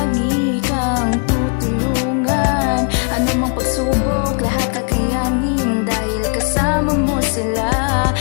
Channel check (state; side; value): quieter; right; 38.7 dB